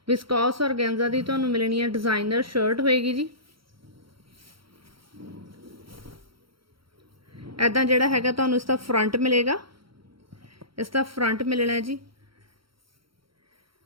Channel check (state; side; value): late; left; 0.74 ms